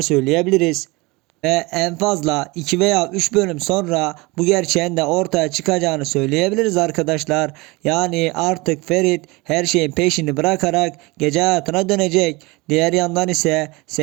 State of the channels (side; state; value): left; quieter; 24.1 dB